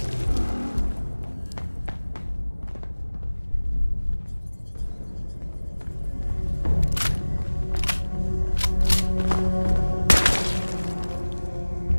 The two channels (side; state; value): both; inverted; correlation -1.00